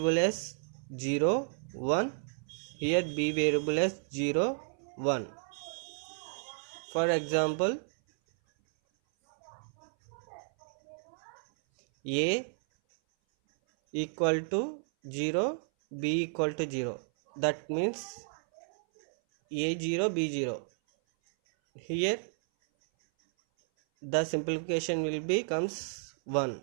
as 0 1, here B variable as 0 1. For example, A equal to 0, B equal to 0. That means A0, B0. Here the simplification will becomes 1.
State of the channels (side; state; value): left; silent; 56 dB below the other